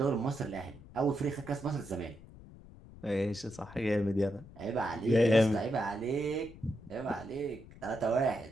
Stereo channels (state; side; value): noise; left; rumble, 19 dB below the sound